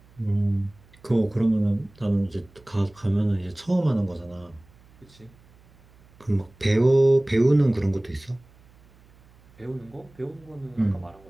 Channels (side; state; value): right; noise; hum, 28 dB below the sound